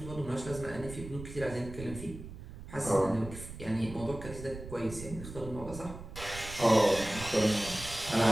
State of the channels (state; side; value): noise; right; rumble, 12 dB below the sound